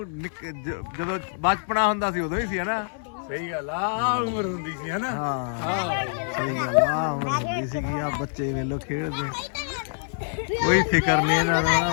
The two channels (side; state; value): right; silent; 61 dB below the other